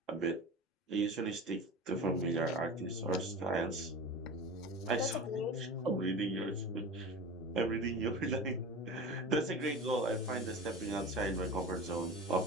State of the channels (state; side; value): normal; both; correlation 0.32